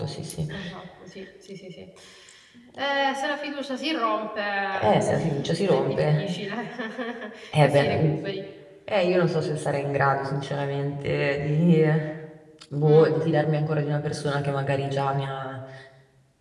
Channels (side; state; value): both; identical; correlation 1.00